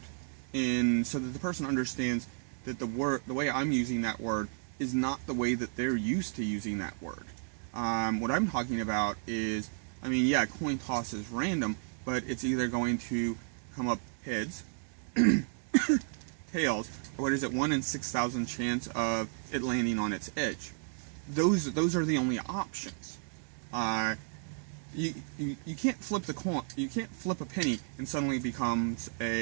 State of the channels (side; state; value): left; silent; 56 dB below the other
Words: and so that the person understands that the way I'm using that word is not the way that they're used to using that word. What I'm talking about is, I mean, yeah, coin toss is random, but it's either going to come up heads, tails, or what is it, 1 in 6,000 chance of it landing on its edge. Those are the only options. You can't flip the coin. You can't flip a penny and suddenly it becomes